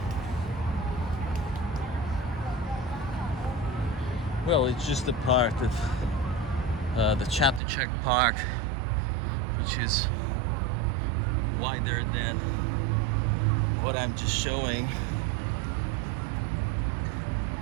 Well, it's just a part of the Chatuchak Park, which is wider than what I'm just showing.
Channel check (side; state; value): left; drops out; at 7.6 s